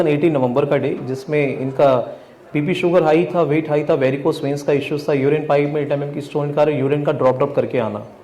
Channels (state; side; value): identical; both; correlation 1.00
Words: नवंबर का डे, जिसमें इनका बीपी शुगर हाई था, वेट हाई था, वेरिकोस वेन्स का इश्यूज था, यूरिन पाइप में 8 mm की स्टोन का, यूरिन का ड्रॉप करके आना.